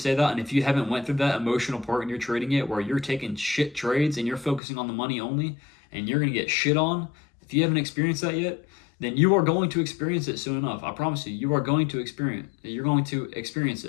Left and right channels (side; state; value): right; drops out; at 4.6 s